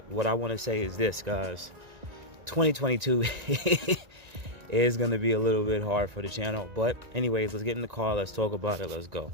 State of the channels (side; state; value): left; late; 1.9 ms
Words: what I want to say is this, guys. 2022 is going to be a little bit hard for the channel, but anyways, let's get in the car, let's talk about it, let's go.